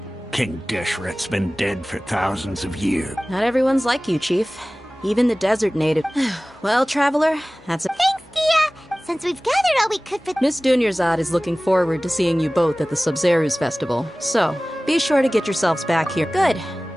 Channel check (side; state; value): both; normal; correlation 0.98